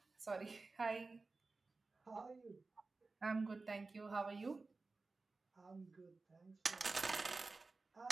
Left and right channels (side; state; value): left; quieter; 3.7 dB